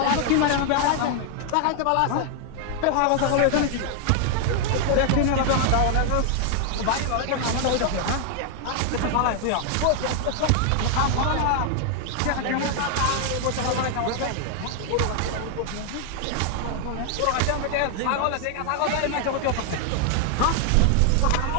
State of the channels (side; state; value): both; different; correlation 0.00